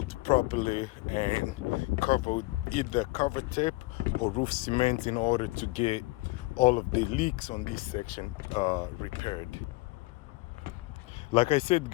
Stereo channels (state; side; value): quieter; right; 23.0 dB